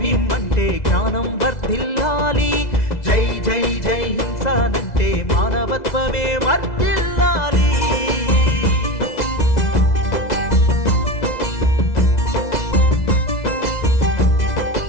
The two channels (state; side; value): late; right; 2.0 ms